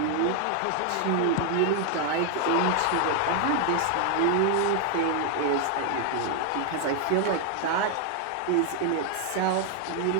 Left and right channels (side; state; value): both; different; correlation 0.00